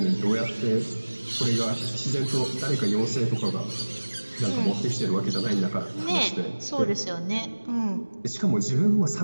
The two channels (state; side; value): inverted; both; correlation -1.00